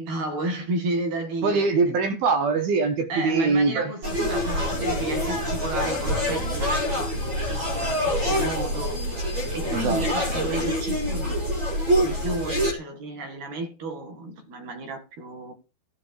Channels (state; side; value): late; left; 12 ms